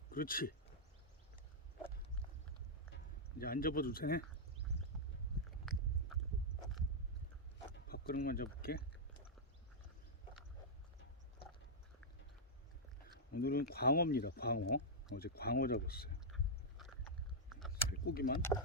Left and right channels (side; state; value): both; normal; correlation -0.07